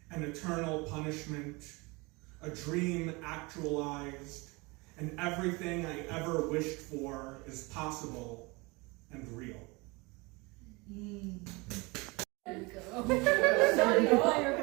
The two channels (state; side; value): quieter; left; 25.9 dB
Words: an eternal punishment, a dream actualized, and everything I ever wished for is possible and real. There we go. Shawty Fire